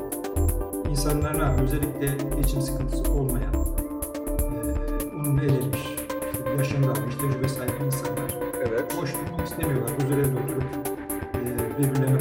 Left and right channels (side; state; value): both; identical; correlation 1.00